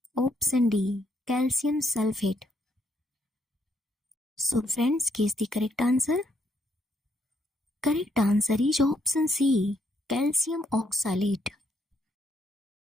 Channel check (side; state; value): both; normal; correlation 0.73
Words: Option D, calcium sulfate. So friends, guess the correct answer. Correct answer is option C, calcium oxalate.